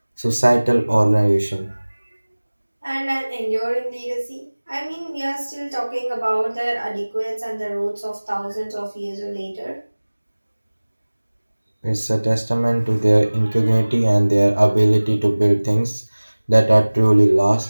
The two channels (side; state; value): both; inverted; correlation -1.00